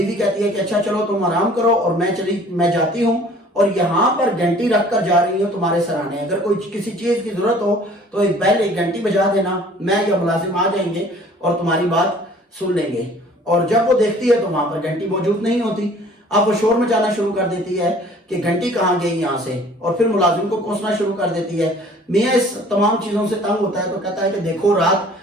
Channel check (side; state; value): both; normal; correlation 0.52